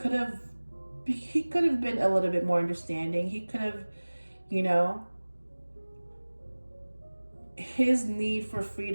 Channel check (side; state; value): both; inverted; correlation -1.00